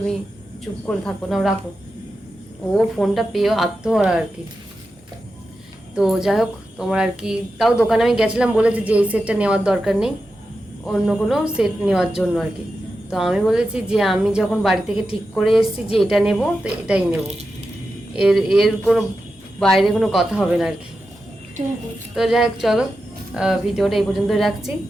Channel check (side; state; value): both; normal; correlation 0.90